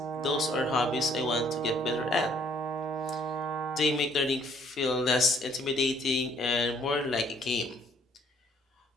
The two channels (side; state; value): both; normal; correlation 0.63